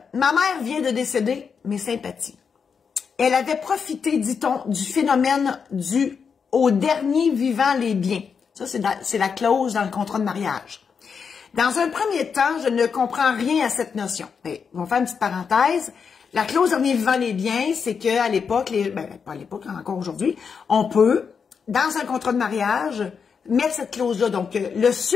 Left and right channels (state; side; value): quieter; right; 6.1 dB